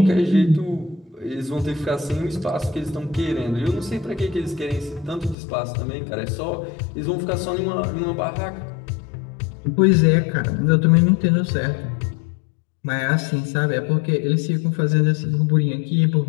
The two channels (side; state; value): right; drops out; at 5.4 s